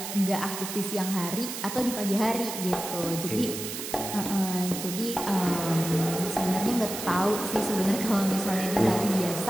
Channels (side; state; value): right; noise; hiss, 7 dB below the sound